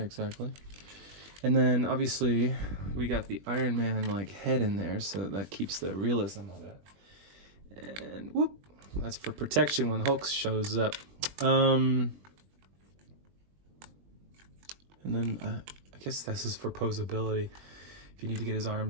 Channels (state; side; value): late; left; 21 ms